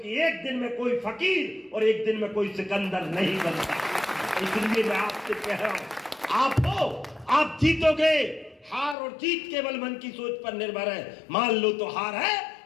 एक दिन में कोई फकीर और एक दिन में कोई सिकंदर नहीं बनता। इसलिए मैं आपसे कह रहा हूं, आप हो, आप जीतोगे। हार और जीत केवल मन की सोच पर निर्भर है। मान लो तो हार है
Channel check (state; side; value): drops out; right; at 9.0 s